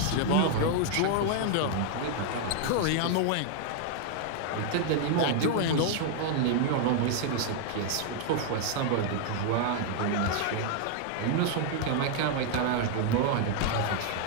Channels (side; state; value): both; different; correlation 0.00